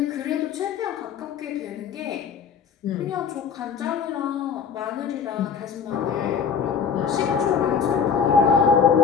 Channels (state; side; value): quieter; right; 6.7 dB